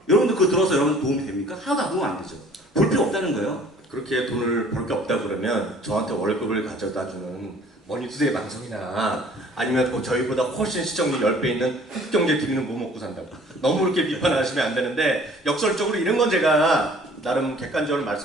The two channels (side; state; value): both; normal; correlation 0.53